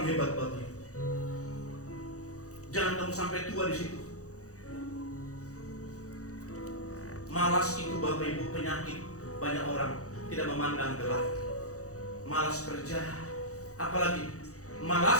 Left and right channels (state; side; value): late; right; 0.65 ms